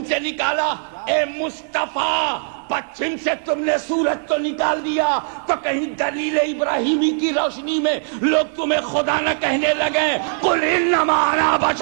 سے نکالا۔ اے مصطفیٰ پچھم سے تم نے سورج تو نکال دیا تو کہیں دلیل ابراہیمی کی روشنی میں لوگ تمہیں خدا نہ کہنے لگے قل انما انا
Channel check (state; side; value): silent; left; 61 dB below the other